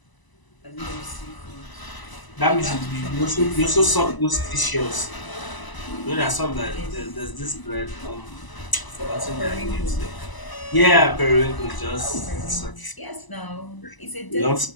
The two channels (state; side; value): late; right; 1.0 ms